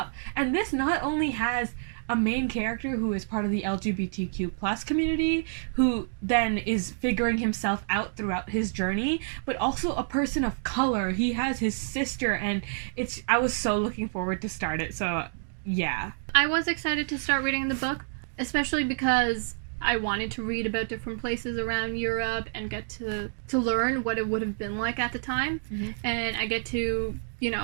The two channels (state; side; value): silent; left; digital silence